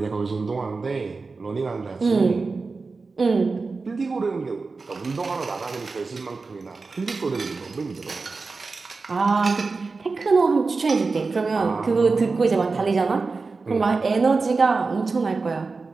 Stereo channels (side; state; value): left; quieter; 4.1 dB